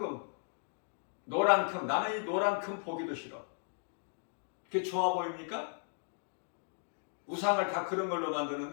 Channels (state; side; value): silent; right; digital silence